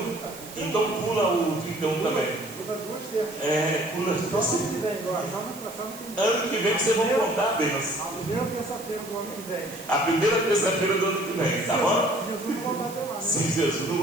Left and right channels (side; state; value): right; noise; hiss, 15 dB below the sound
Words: Então pula o 31 também. Pula. Ano que vem vocês vão contar a bênção. A primeira terça-feira do ano que vem. A primeira terça-feira do ano que vem, tá bom? Jesus não voltar até lá, né? Se Jesus não